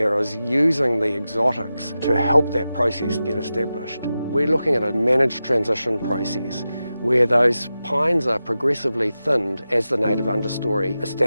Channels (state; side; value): inverted; both; correlation -0.92